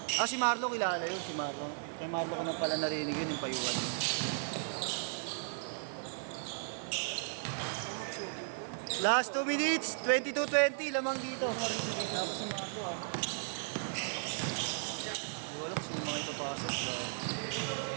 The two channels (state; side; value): silent; left; digital silence